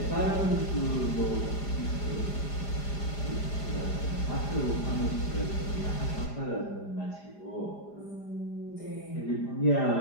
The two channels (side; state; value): right; late; 4.9 ms